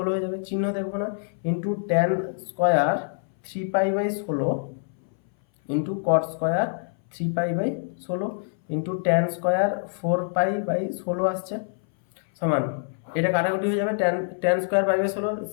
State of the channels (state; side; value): silent; right; 59 dB below the other